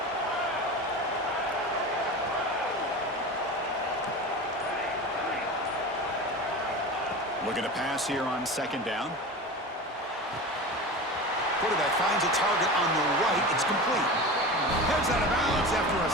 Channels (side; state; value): both; normal; correlation 0.30